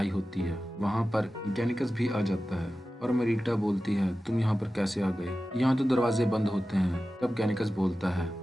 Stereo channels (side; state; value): both; normal; correlation 0.94